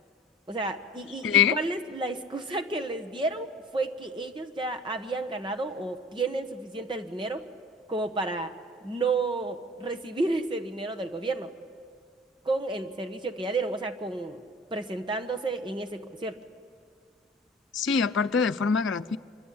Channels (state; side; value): normal; both; correlation 0.45